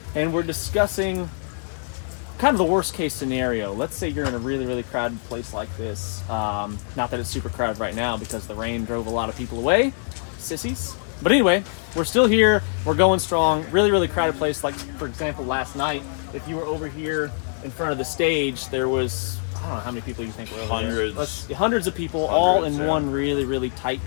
and we're discussing kind of the worst case scenario. Let's say you're in a really crowded place like this. Not that it's super crowded right now because the rain drove a lot of people away. Sissies. But anyway, we're still here. We're going strong. Really crowded place. Like, for example, last night, if you were over here in front of the stage, there was, I don't know how many people you think were over there. Hundreds of people, all in one really tight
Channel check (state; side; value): silent; right; digital silence